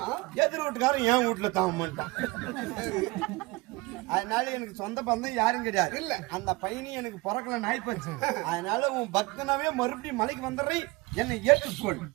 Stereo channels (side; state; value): left; quieter; 23.2 dB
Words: எதிர் வீட்டுக்காரன் என் வீட்டுல தவம் பண்ணிட்டான். அதனால எனக்கு சொந்த பந்தம் யாரும் கிடையாது. இல்ல அந்த பையனையும் எனக்கு பிறக்கல நாய் போச்சு. அதனால உன் பக்தனாவே மறுபடியும் மலைக்கு வந்துடுறேன், என்னை ஏற்றுக்கொள்.